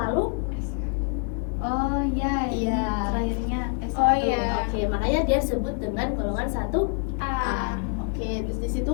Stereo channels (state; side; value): quieter; right; 38.7 dB